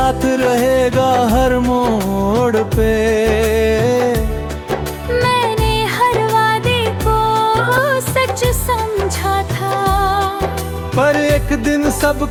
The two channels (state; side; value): identical; both; correlation 1.00